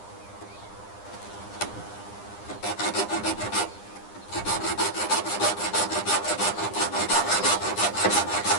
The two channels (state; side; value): late; right; 9.9 ms